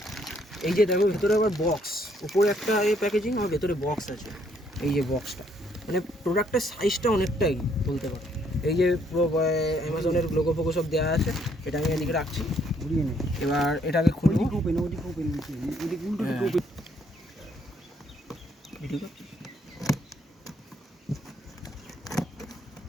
এই যে দেখো ভেতরে আবার বক্স, উপরে একটা প্যাকেজিং আর ভেতরে বক্স আছে। এই যে বক্সটা, মানে প্রোডাক্টের সাইজটা অনেকটাই বলতে পারো। এই যে পুরো অ্যামাজনের লোগো ফোগো সব দেওয়া আছে। এটা আমি এদিকে রাখছি, এবার এটাকে খুলবো।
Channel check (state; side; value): normal; both; correlation 0.68